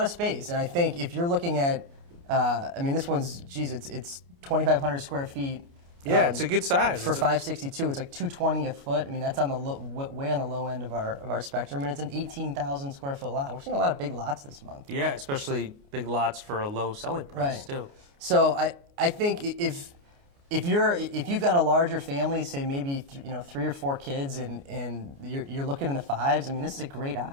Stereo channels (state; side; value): late; left; 29 ms